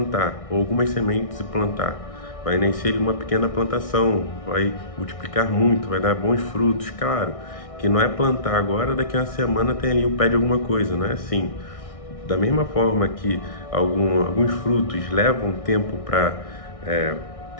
ou algumas sementes e plantar. Vai nascer uma pequena plantação, vai multiplicar muito, vai dar bons frutos. Claro que não é plantar agora, daqui a uma semana tem ali o pé de alguma coisa, não é assim. Da mesma forma que alguns frutos levam tempo para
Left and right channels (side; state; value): right; late; 1.6 ms